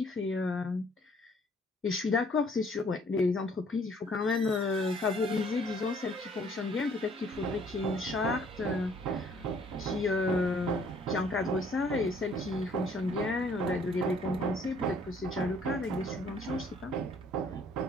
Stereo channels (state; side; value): normal; both; correlation 0.60